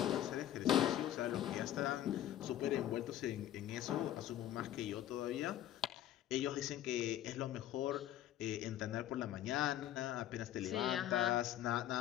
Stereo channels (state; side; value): quieter; right; 12.3 dB